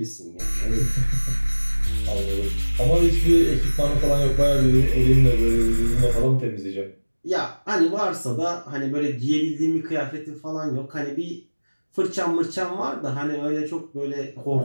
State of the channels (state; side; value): inverted; both; correlation -1.00